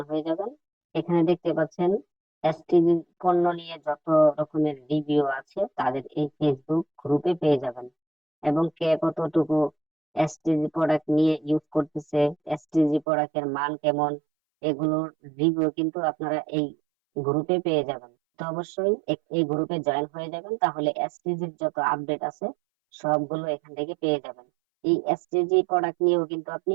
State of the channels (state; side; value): drops out; left; at 13.1 s